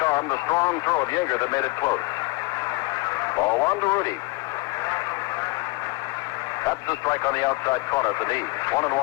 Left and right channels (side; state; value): right; quieter; 24.6 dB